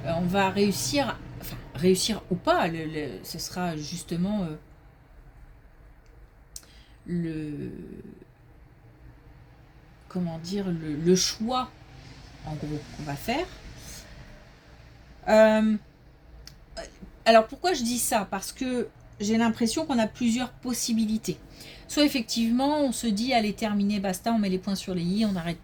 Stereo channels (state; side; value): identical; both; correlation 1.00